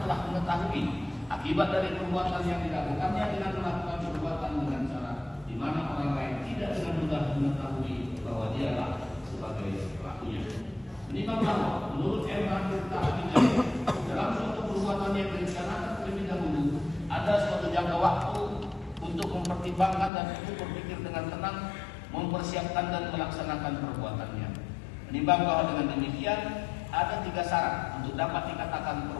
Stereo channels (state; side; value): drops out; right; at 20.1 s